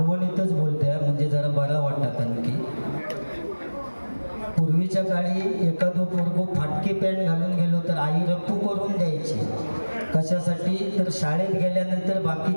बोलते म्हणजे जरा बरा वाटतात आणखी. पूर्वीच्या काळी एखादं पोरगो फाटकी पॅन्ट घालून गेलो तर आई रप्पू करून द्यायची. कशासाठी तर शाळेत गेल्यानंतर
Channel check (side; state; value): both; inverted; correlation -1.00